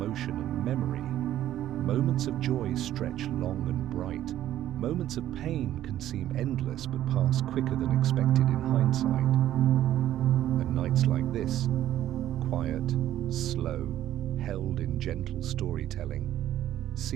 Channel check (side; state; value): left; quieter; 12.5 dB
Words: and memory. Moments of joy stretch long and bright. Moments of pain can seem endless but pass quicker than expected in hindsight. And nights like this, quiet, slow, held in gentle storytelling,